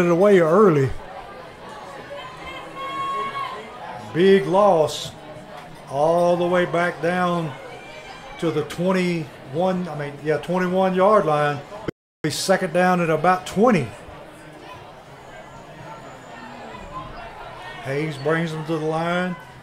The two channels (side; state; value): both; identical; correlation 1.00